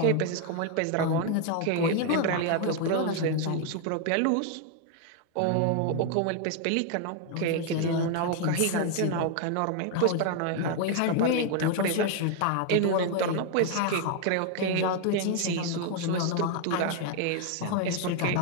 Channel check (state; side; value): different; both; correlation 0.00